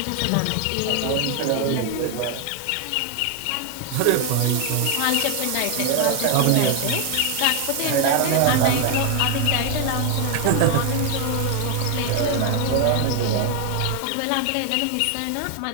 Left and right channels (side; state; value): both; different; correlation 0.00